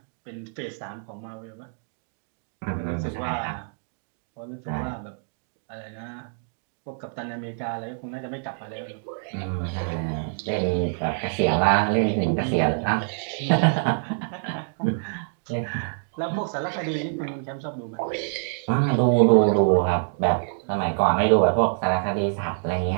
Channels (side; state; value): left; silent; digital silence